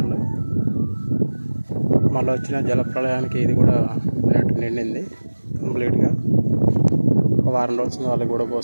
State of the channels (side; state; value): both; inverted; correlation -1.00